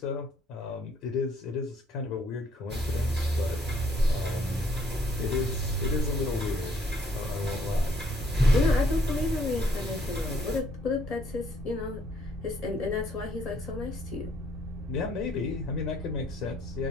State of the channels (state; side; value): normal; both; correlation 0.66